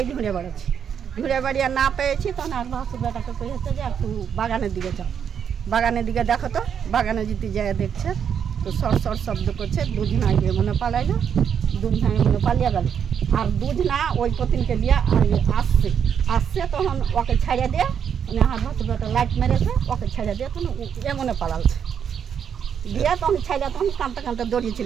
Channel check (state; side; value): quieter; left; 7.9 dB